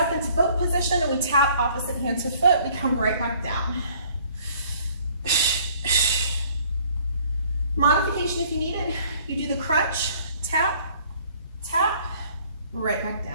into boat position and we tap opposite hand to foot. We come right back down. Modification if you need it. You do the crunch, tap, tap, right back down.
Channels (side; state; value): both; inverted; correlation -0.57